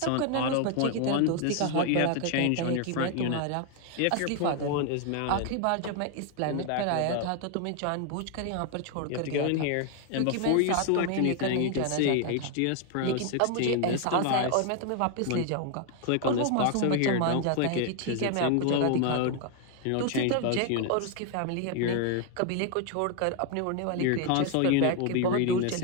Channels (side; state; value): both; different; correlation 0.00